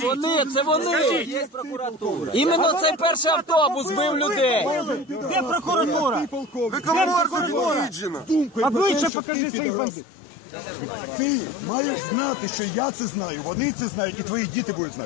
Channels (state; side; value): drops out; right; at 9.1 s